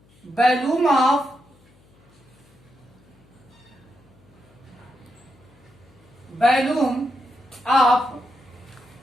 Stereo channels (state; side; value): noise; left; hum, 29 dB below the sound